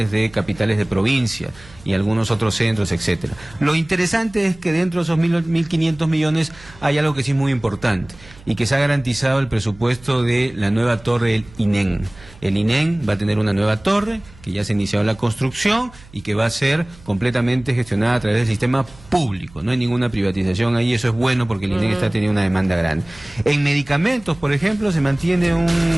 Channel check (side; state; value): right; noise; hum, 23 dB below the sound